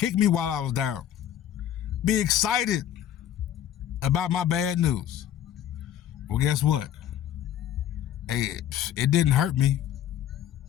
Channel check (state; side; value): quieter; right; 10.6 dB